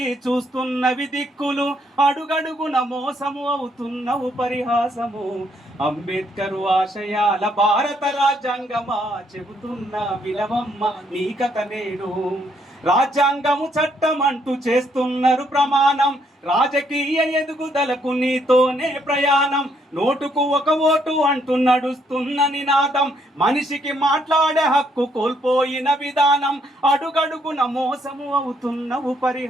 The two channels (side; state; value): both; normal; correlation 0.71